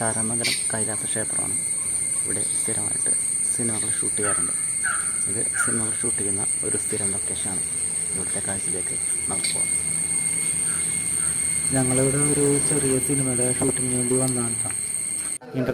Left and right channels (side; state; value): both; identical; correlation 1.00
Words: കൈലാസ ക്ഷേത്രമാണ്. ഇവിടെ സ്ഥിരമായിട്ട് സിനിമകൾ ഷൂട്ട് ചെയ്യാറുണ്ട്. ഇത് സിനിമകൾ ഷൂട്ട് ചെയ്യുന്ന ഒരു സ്ഥിരം ലൊക്കേഷനാണ്. ഇവിടുത്തെ കാഴ്ചയിലേക്ക് നമുക്ക് പോകാം. ഞങ്ങളിവിടെ ഒരു ചെറിയ സിനിമയുടെ ഷൂട്ടിങ്ങിന് വേണ്ടി വന്നതാണ്.